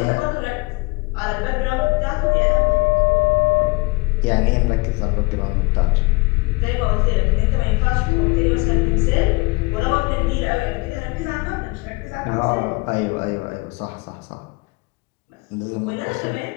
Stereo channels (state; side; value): quieter; right; 24.9 dB